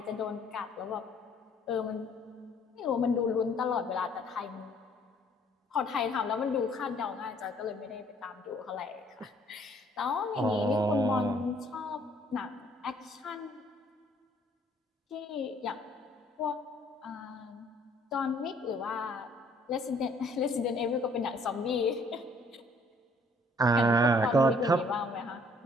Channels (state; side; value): normal; both; correlation 0.61